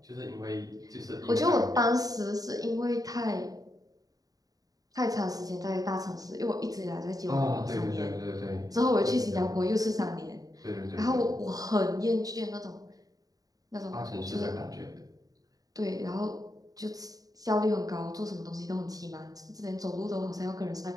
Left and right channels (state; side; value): late; left; 0.18 ms